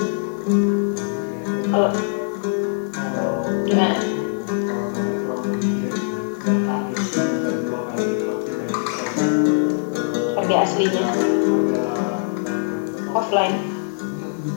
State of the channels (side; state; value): right; silent; digital silence